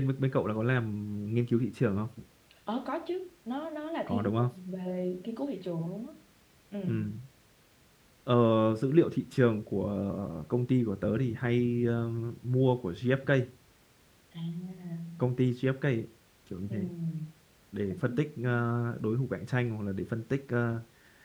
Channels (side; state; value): both; identical; correlation 1.00